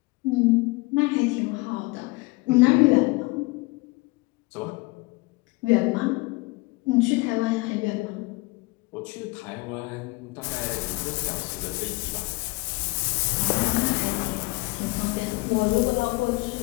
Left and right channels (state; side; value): quieter; right; 24.8 dB